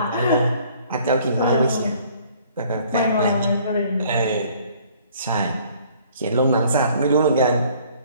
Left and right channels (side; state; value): both; inverted; correlation -0.57